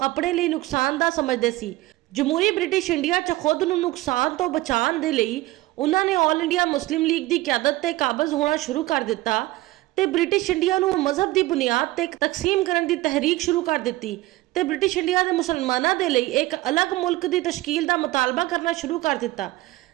अपने लिए नुकसानदा समझते सी। जमहूरी ब्रिटिश इंडिया च खुद नूं नुकसान तो बचाने दे लई उन्होंने ऑल इंडिया मुस्लिम लीग की क्यादत ते काबज होना शुरू कर दिता ते ब्रिटिश इंडिया नूं मजहब की बुनियाद ते तकसीम करने की तहरीक शुरू कर दी ते ब्रिटिश इंडिया के मुसलमानों के लिए एक अलग मुल्क की तश्कील का मुतालबा करना शुरू कर दिता।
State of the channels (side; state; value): left; quieter; 18.3 dB